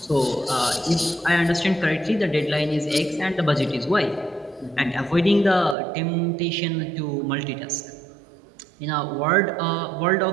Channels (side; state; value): left; drops out; at 5.8 s